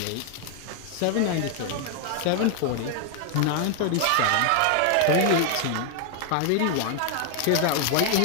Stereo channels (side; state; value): both; different; correlation 0.00